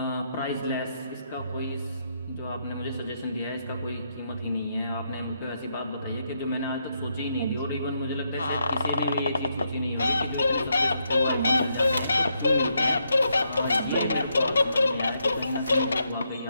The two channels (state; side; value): inverted; both; correlation -0.79